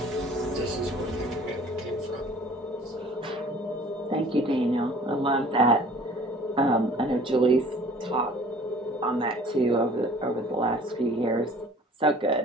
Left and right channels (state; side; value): normal; both; correlation 0.50